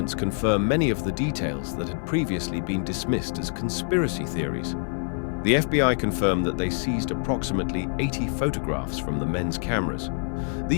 confirm many of the details that had previously been dismissed as conspiracy theories. The FBI confirmed that they seized approximately 80 photographs from the men's cameras.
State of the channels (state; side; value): silent; right; 61 dB below the other